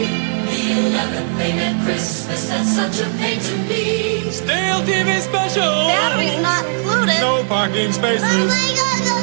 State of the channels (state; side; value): silent; left; 60 dB below the other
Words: The 11th thing at Christmas that's such a pain to me, stale TV special, Battery's not included. No parking Oh spaces. my God, go